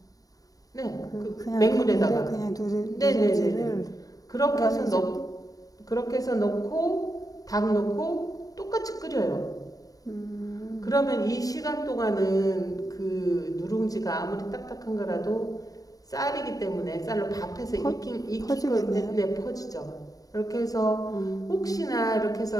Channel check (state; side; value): late; right; 0.18 ms